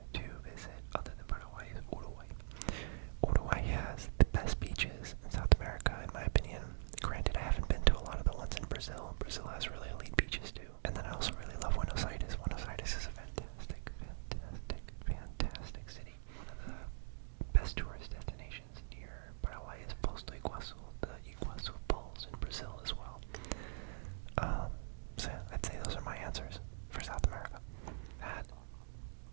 to visit, other than Paraguay, is Uruguay. Uruguay has the best beaches in South America, in my opinion. Granted, I haven't been to a lot of the ones in Brazil. Brazil has really elite beaches too. And then I also really love Buenos Aires. Buenos Aires is a fantastic, fantastic, fantastic city. One of the best tourist destinations near Paraguay is Posto Iguazu, the Iguazu Falls in Brazil as well. So I'd say those are my answers for South America.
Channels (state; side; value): silent; left; digital silence